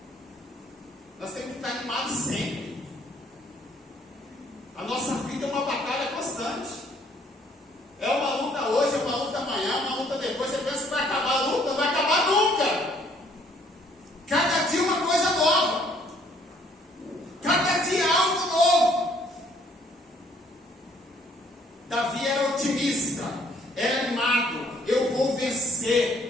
Nós temos que ficar animados sempre. A nossa vida é uma batalha constante. É uma luta hoje, é uma luta amanhã, é uma luta depois. Você pensa que vai acabar a luta? Não vai acabar nunca. Cada dia uma coisa nova. Cada dia algo novo. Davi era otimista, era animado. Eu vou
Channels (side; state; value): both; normal; correlation 0.63